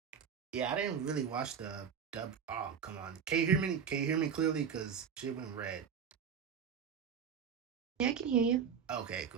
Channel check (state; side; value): quieter; left; 7.2 dB